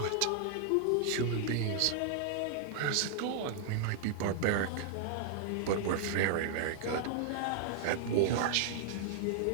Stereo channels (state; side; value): different; both; correlation 0.00